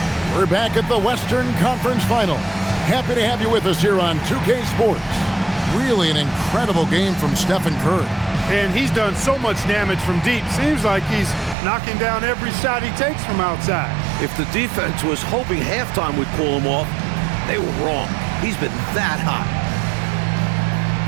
We're back at the Western Conference Final. Happy to have you with us here on 2K Sports. Really an incredible game from Stephen Curry. And he's done so much damage from deep. Seems like he's knocking down every shot he takes from outside. If the defense was hoping halftime would pull him off, they were wrong. He's been that hot.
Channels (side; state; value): left; drops out; at 11.6 s